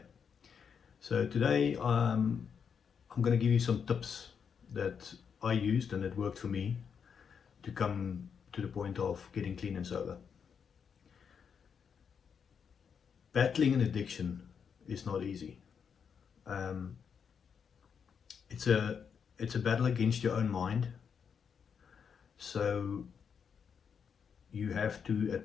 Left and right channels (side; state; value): right; quieter; 6.8 dB